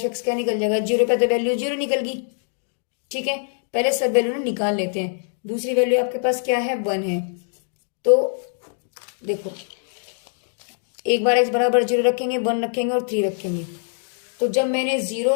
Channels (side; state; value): right; silent; digital silence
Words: एक्स क्या निकल जाएगा, 0 पे तो वैल्यू 0 निकल गई। ठीक है, पहले सब वैल्यू निकाल लेते हैं। दूसरी वैल्यू आपके पास क्या है, 1 है। तो देखो एक बार x बराबर 0 रखेंगे, 1 रखेंगे और 3 रखेंगे। तो जब मैंने 0